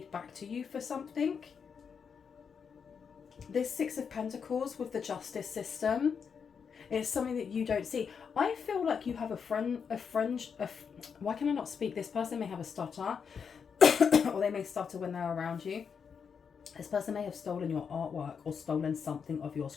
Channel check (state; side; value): quieter; right; 6.5 dB